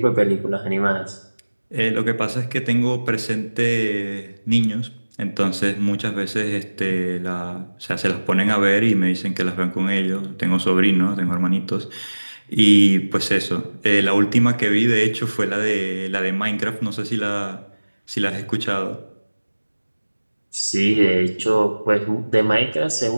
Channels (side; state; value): both; inverted; correlation -1.00